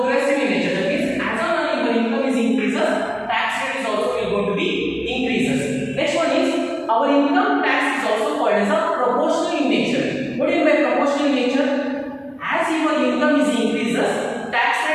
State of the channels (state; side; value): identical; both; correlation 1.00